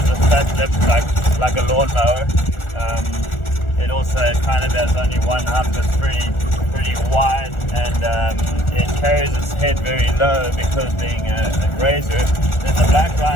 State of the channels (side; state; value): right; late; 1.4 ms